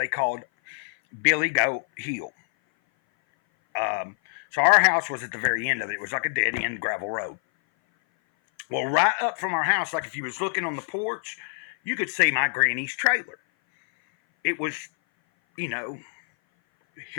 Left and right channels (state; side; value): silent; right; 57 dB below the other